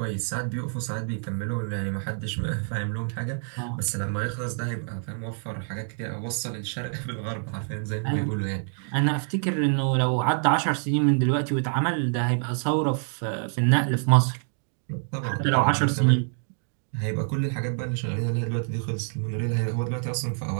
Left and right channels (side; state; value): left; silent; 60 dB below the other